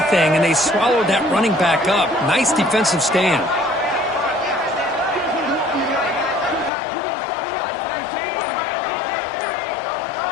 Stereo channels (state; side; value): drops out; right; at 6.7 s